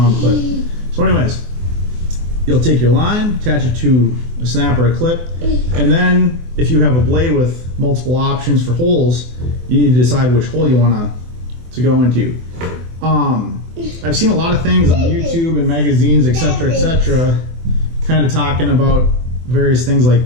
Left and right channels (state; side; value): late; left; 24 ms